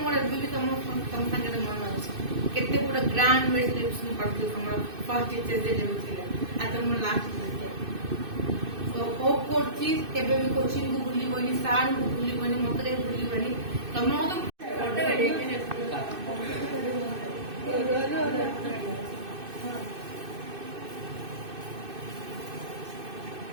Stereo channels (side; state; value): left; late; 2.6 ms